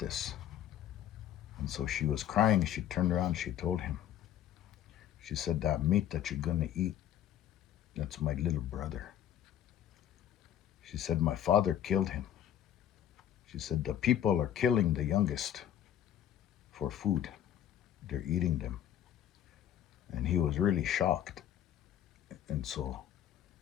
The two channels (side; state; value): right; quieter; 10.8 dB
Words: And so she was crying. She turned around, she told him. She said, that meat that you're gonna eat, that's my little brother. She said, my father killed him. She said, the people are killing the youngest for food. They're eating them. And he was really shocked. And so